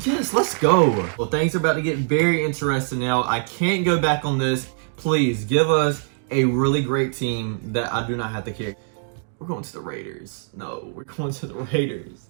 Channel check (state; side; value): silent; left; 63 dB below the other